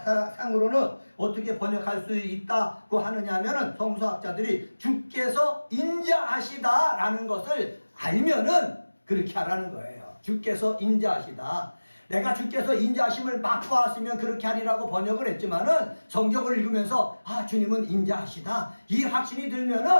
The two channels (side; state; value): both; inverted; correlation -1.00